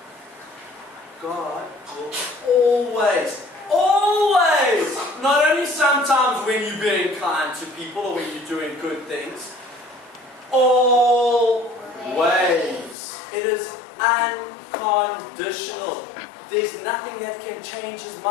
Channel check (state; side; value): drops out; right; at 13.0 s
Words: God will always, not only sometimes when you're being kind to people or when you're doing good things, always. It is unconditional. There's nothing that can change his